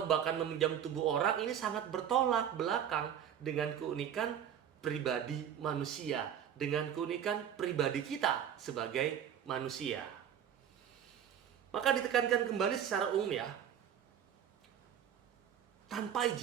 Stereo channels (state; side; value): quieter; left; 9.3 dB